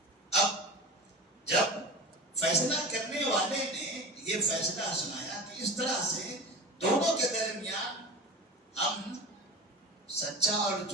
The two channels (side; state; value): both; normal; correlation 0.32